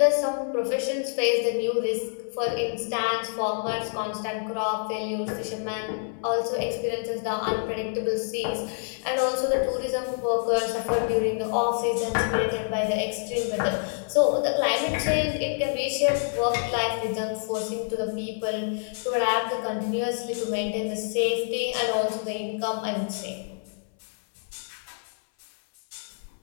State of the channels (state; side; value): silent; right; 60 dB below the other